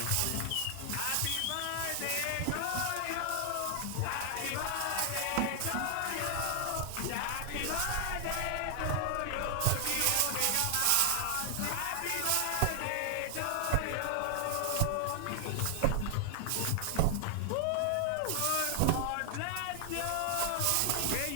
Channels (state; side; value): different; both; correlation 0.00